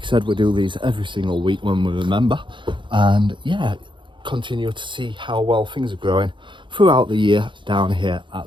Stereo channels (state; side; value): late; left; 0.23 ms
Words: I said, we do these every single week when we remember, and yeah, continue to see how well things are growing throughout the year down here